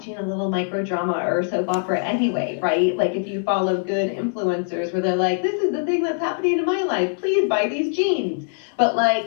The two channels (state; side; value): silent; right; digital silence